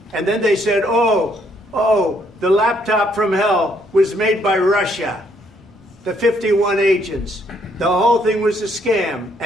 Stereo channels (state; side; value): normal; both; correlation 0.70